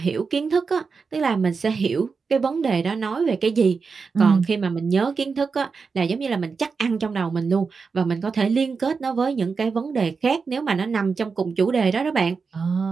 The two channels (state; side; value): quieter; left; 5.0 dB